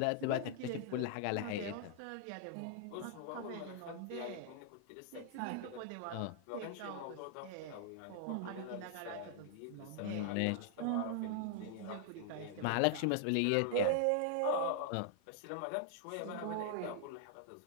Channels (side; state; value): both; different; correlation -0.01